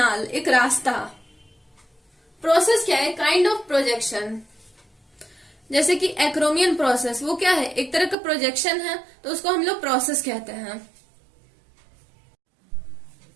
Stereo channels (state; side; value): drops out; left; at 8.2 s